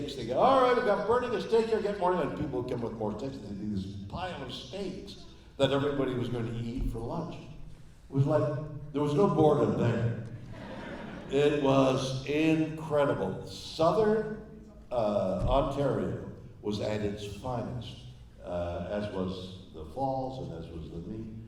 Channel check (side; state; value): both; identical; correlation 1.00